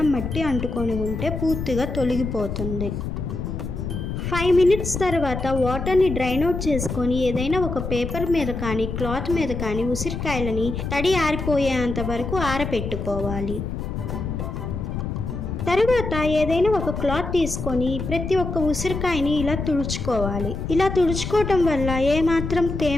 మట్టి అంటుకొని ఉంటే పూర్తిగా తొలగిపోతుంది. 5 minutes తర్వాత వాటర్ని డ్రైన్ అవుట్ చేసుకొని ఏదైనా ఒక పేపర్ మీద కానీ క్లాత్ మీద కానీ ఉసిరికాయలని తడి ఆరిపోయేంత వరకు ఆరబెట్టుకోవాలి. తరువాత ఏదైనా ఒక క్లాత్ తీసుకొని ప్రతి ఒక్క ఉసిరికాయని ఇలా తుడుచుకోవాలి. ఇలా తుడుచుకోవటం వల్ల ఏమాత్రం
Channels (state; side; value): noise; left; rumble, 5 dB below the sound